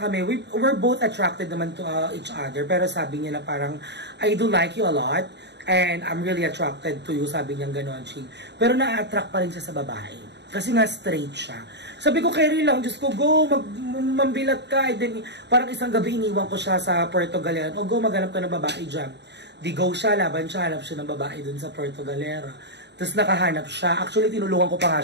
we're both attracted naman to each other. Pero sabi niya na parang, I do like you a lot. And I'm really attracted to you, sabi niya gano'n, Ching. Pero na-attract pa rin siya sa babae. Kasi nga straight siya. Sabi ko, carry lang, Diyos ko, go, mambilat ka. And then, parang isang gabi iniwan ko siya sa Puerto Galera. O go, maghanap ka ng babae dyan. Di go siya, laban siya, hanap siya ng babae dun sa Puerto Galera. Tapos nakahanap siya. Actually, tinulungan ko pa nga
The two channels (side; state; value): left; late; 0.50 ms